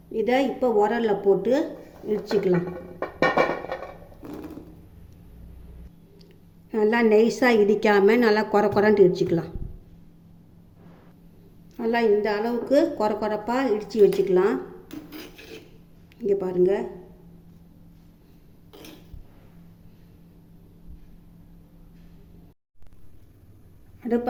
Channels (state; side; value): identical; both; correlation 1.00